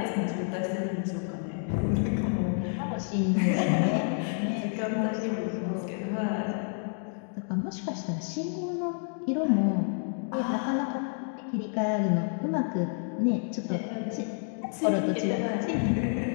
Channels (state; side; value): silent; right; 58 dB below the other